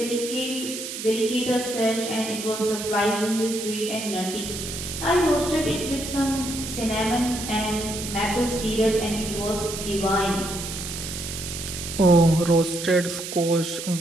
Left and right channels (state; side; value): noise; right; hiss, 7 dB below the sound